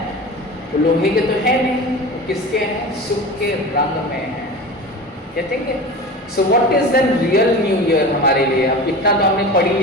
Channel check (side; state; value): both; normal; correlation 0.32